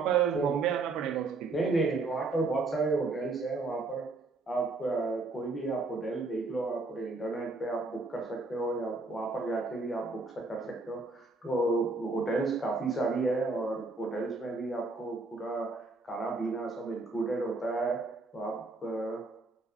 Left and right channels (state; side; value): quieter; left; 3.5 dB